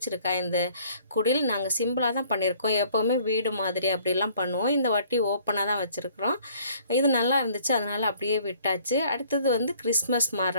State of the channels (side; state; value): both; inverted; correlation -0.58